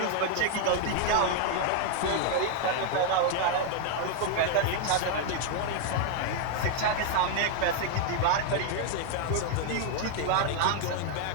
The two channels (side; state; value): both; different; correlation 0.00